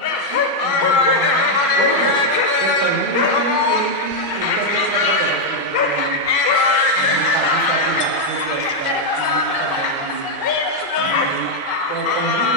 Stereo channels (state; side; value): late; left; 1.9 ms